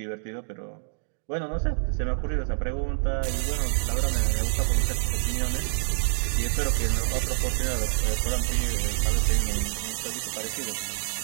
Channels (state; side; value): silent; left; digital silence